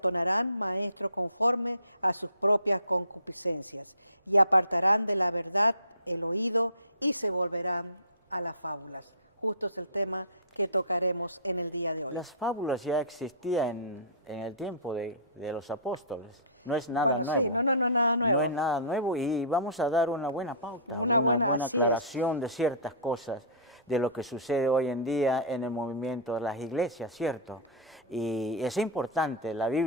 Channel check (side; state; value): both; inverted; correlation -0.34